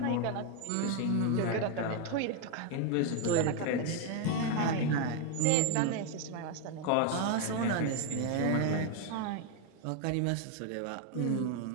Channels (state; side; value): different; both; correlation 0.01